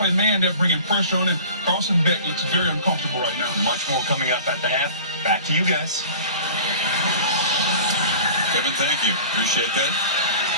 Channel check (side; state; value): both; inverted; correlation -0.42